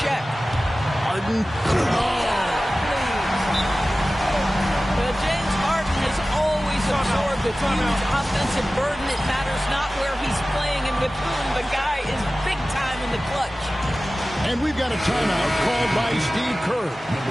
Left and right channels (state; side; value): normal; both; correlation 0.96